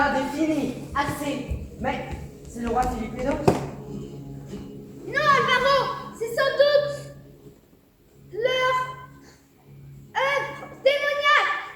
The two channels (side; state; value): both; identical; correlation 1.00